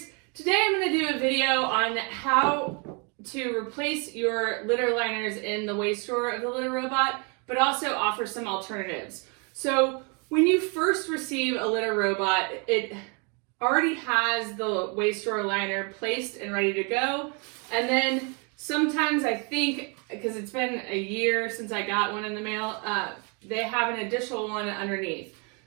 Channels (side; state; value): left; quieter; 33.6 dB